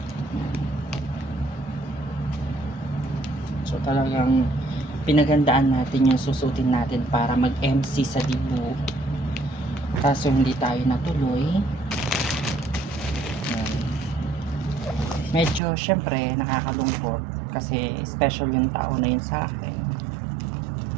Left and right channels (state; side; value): drops out; left; at 15.6 s